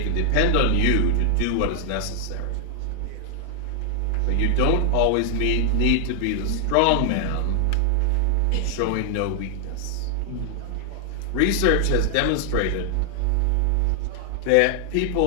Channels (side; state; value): both; different; correlation 0.00